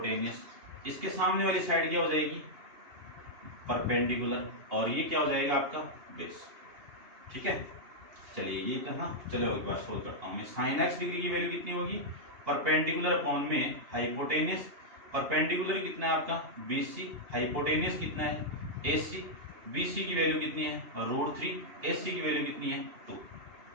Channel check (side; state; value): left; late; 2.8 ms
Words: इसके सामने वाली साइड क्या हो जाएगी परपेंडिकुलर और ये क्या हो जाएगा आपका बेस। ठीक है, चलिए ये तो ना, चलो एक बार सोल्व करता हूँ मैं। sin x डिग्री की वैल्यू कितनी होगी परपेंडिकुलर अपॉन में हाइपोटेनियस, परपेंडिकुलर कितना है आपका BC, हाइपोटेनियस कितना है AC, BC की वैल्यू कितनी है √3, AC की वैल्यू कितनी है 2।